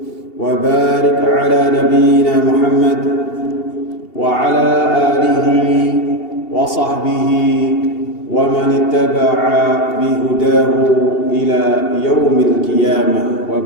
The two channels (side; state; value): right; late; 2.8 ms